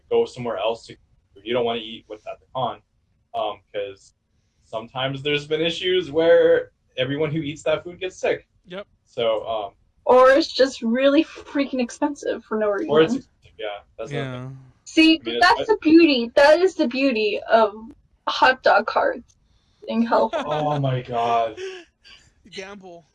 go somewhere else to. You don't want to eat what's at the con, because sometimes there's been issues where everyone who eats that food gets sick. Yep. So. Or it's just really freaking expensive for no reason. Or it's that's yeah. See, that's the beauty. That is the beauty of hot dog carts in California. Oh my god. Gamble.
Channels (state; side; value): identical; both; correlation 1.00